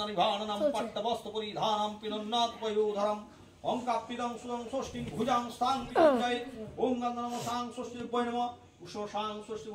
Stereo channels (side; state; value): both; identical; correlation 1.00